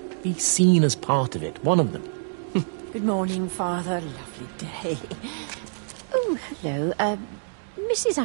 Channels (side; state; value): left; silent; digital silence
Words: Be seen as part of it. One of them. Good morning, Father. Lovely day. Oh, hello. Mrs.